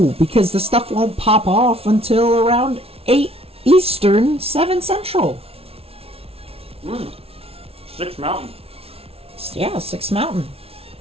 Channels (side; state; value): left; late; 0.29 ms